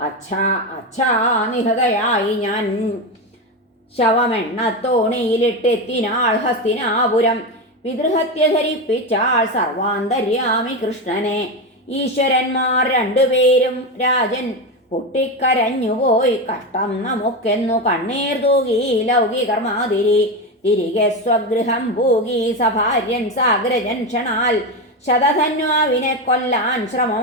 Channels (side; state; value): both; normal; correlation 0.15